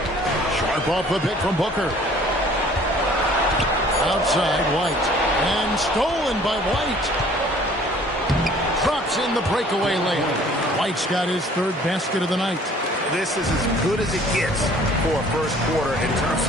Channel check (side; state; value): both; normal; correlation 0.53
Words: Sharp off the pick from Booker. Outside, White. And stolen by White. Drops in the breakaway layup. White's got his third basket of the night. This is as good as it gets for a first quarter in terms